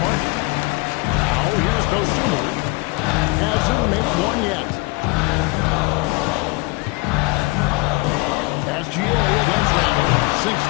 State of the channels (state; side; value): quieter; right; 25.6 dB